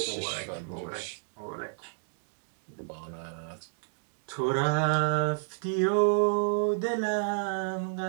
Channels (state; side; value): silent; left; digital silence